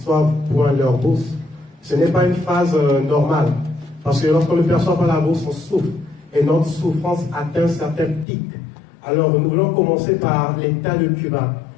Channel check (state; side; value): drops out; right; at 8.2 s